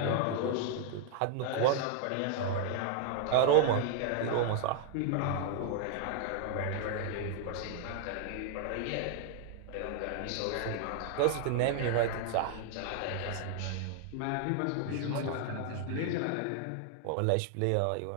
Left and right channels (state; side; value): different; both; correlation 0.00